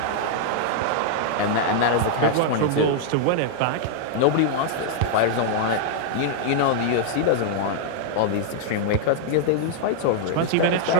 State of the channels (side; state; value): both; different; correlation -0.01